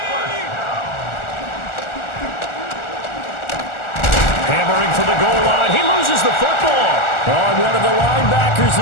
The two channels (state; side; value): late; right; 1.4 ms